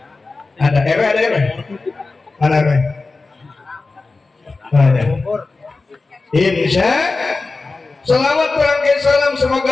Ada RW, ada RW? Mana RW? Ada. Insya selawat rangkai salam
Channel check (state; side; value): quieter; right; 3.7 dB